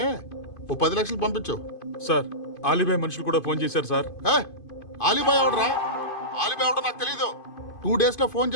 ఓ 10 లక్షలు పంపించు. సార్, ఆలిబాయ్ మనుషులు కూడా ఫోన్ చేశారు సార్. ఆలిబాయ్ ఎవడరా? ఆలిబాయ్ ఎవడో నాకు తెలీదు. 2 days లో ఫోన్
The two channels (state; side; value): late; right; 2.5 ms